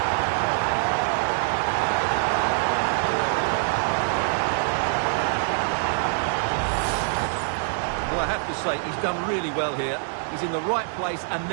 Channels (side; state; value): left; silent; 62 dB below the other